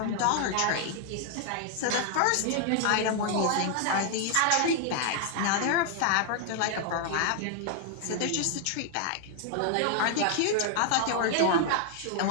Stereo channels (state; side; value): different; both; correlation 0.00